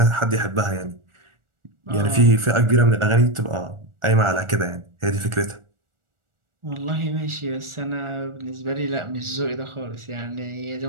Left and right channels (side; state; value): left; late; 1.4 ms